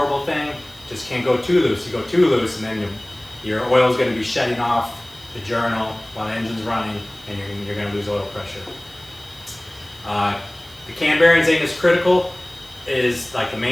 thing. Just can't go too loose. You go too loose, and then your oil is going to be shedding off the journal while the engine's running, and you're going to lose oil pressure. The cam bearings ain't as critical as like the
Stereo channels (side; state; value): right; noise; hiss, 24 dB below the sound